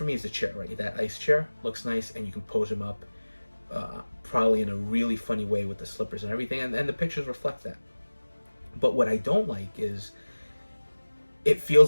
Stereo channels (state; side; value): inverted; both; correlation -1.00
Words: me is the chair, right? That ice chair looks nice, and you can pose him up probably in a really funny way with the slippers and everything. And the pictures reflect that. But what I don't like is it